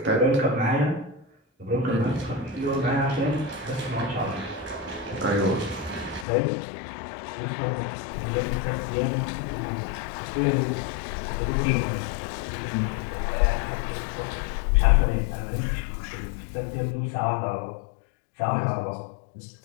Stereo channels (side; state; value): right; drops out; at 6.2 s